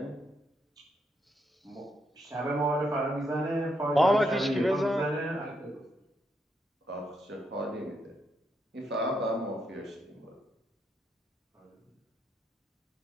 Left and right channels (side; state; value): both; normal; correlation 0.78